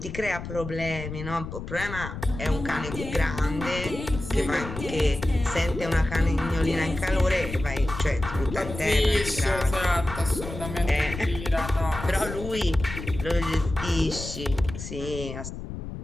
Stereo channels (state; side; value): noise; left; rumble, 9 dB below the sound